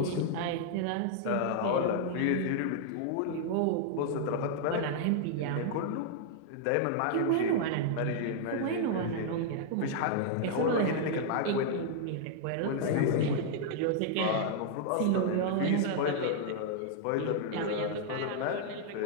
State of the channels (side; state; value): both; different; correlation -0.01